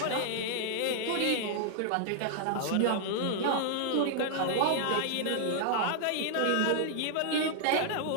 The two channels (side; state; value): both; different; correlation -0.01